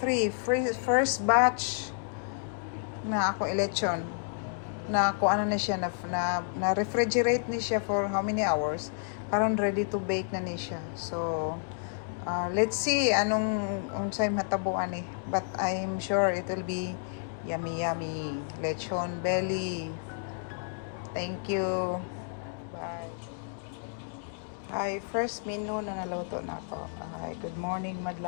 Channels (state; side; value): silent; right; digital silence